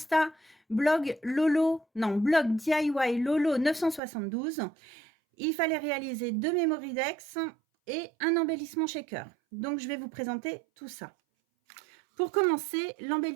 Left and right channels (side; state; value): left; drops out; at 4.0 s